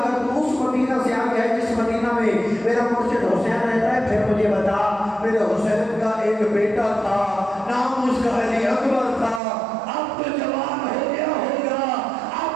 تو اس مدینہ سے آئی ہے جس مدینہ میں میرا مرشد حسین رہتا ہے، پھر مجھے بتا میرے حسین کا ایک بیٹا تھا، نام اس کا علی اکبر تھا، اب تو جوان ہو گیا ہوگا،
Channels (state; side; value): drops out; left; at 9.4 s